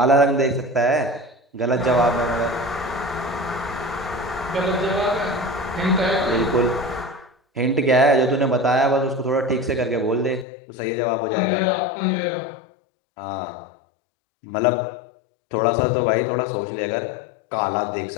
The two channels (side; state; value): right; drops out; at 10.5 s